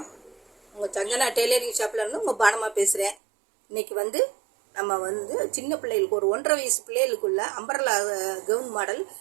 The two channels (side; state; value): left; drops out; at 3.2 s